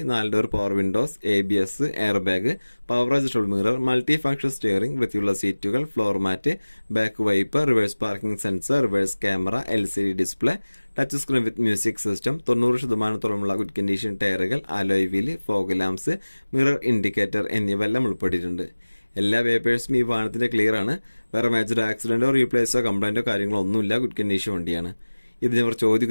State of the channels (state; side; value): inverted; both; correlation -1.00